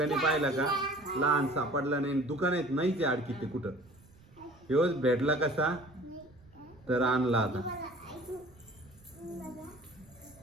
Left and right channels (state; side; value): noise; right; rumble, 26 dB below the sound